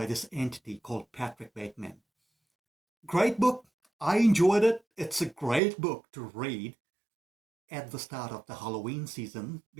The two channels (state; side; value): drops out; left; at 5.6 s